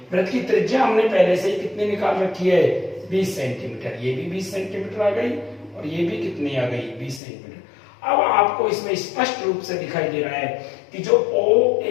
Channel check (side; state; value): right; drops out; at 7.2 s